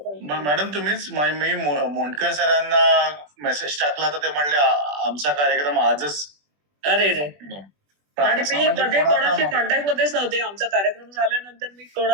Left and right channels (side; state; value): left; late; 20 ms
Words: मॅडम तुम्हीच मी मोंडकर सरांना मेसेज टाकला तर ते म्हणले आमचा कार्यक्रम आजच." अरे रे. पण आणि असं मी म्हणजे मध्ये कोणाचा कोणाशी मग- कॉन्टॅक्ट मध्येच नव्हते. आमचा कार्यक्रम झाल्यानंतर मी